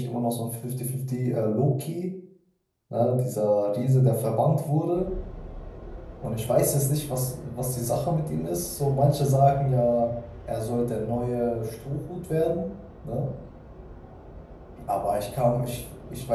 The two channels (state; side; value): identical; both; correlation 1.00